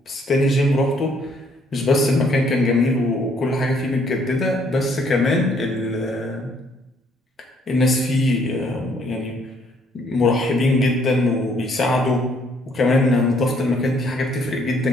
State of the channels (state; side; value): normal; both; correlation 0.66